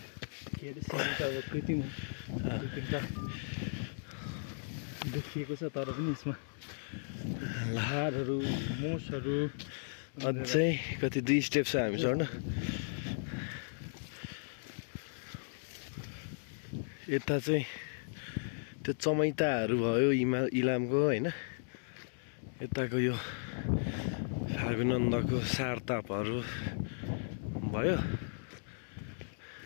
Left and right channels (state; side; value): silent; right; 54 dB below the other